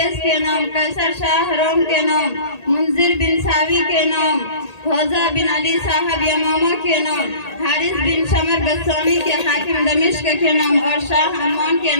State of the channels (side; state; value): right; late; 1.8 ms